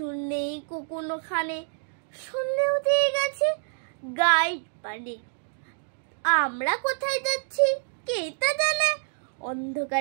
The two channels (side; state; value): left; silent; digital silence